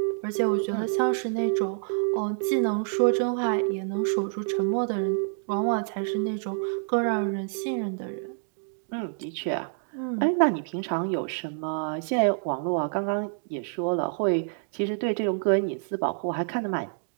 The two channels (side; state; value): left; silent; digital silence